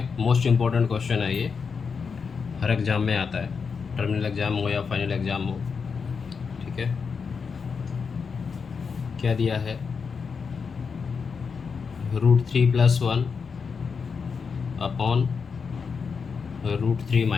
मोस्ट इम्पोर्टेंट क्वेश्चन है ये, हर एग्जाम में आता है, टर्मिनल एग्जाम हो या फाइनल एग्जाम हो। ठीक है, क्या दिया है, √3+1 अपॉन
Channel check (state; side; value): quieter; right; 5.6 dB